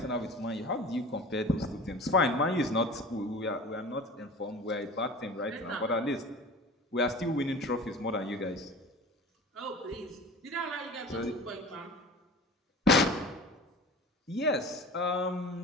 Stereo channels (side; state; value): both; normal; correlation 0.38